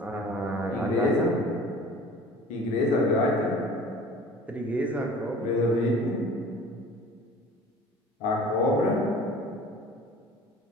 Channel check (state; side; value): normal; both; correlation 0.44